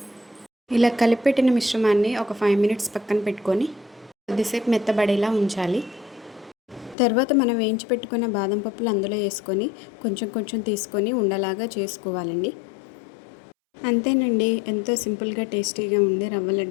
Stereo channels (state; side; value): drops out; right; at 7.0 s